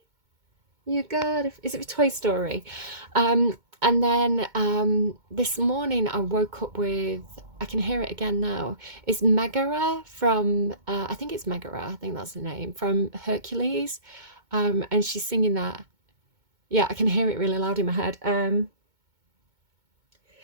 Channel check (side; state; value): left; late; 2.2 ms